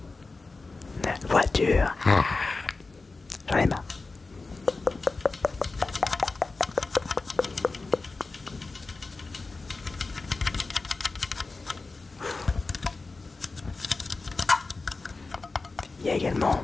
Voiture. J'en ai marre. Il y a également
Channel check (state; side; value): quieter; right; 3.7 dB